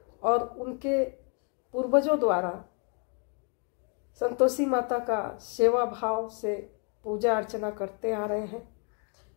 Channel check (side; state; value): right; quieter; 36.0 dB